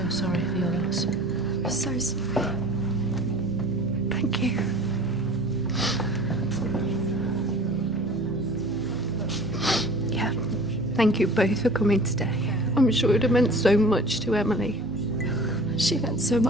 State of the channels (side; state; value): both; normal; correlation 0.44